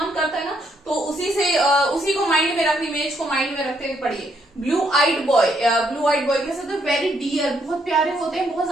करता है ना। तो उसी को माइंड में रखनी, इमेज को माइंड में रखते हुए पढ़िए blue eyed boy. Blue eyed boy कैसे होते हैं, वेरी डियर, बहुत प्यारे होते हैं, बहुत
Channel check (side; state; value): both; normal; correlation 0.73